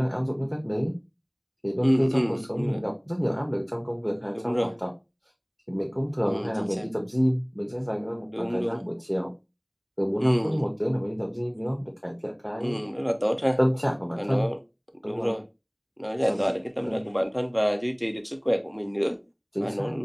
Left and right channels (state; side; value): identical; both; correlation 1.00